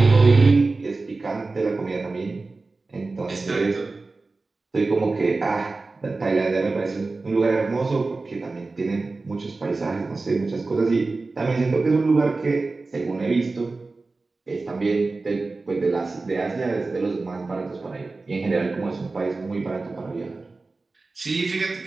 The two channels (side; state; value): left; quieter; 3.6 dB